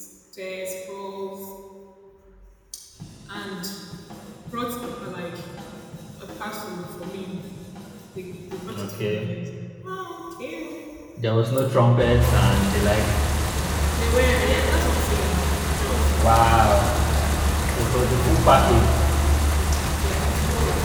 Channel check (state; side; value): identical; both; correlation 1.00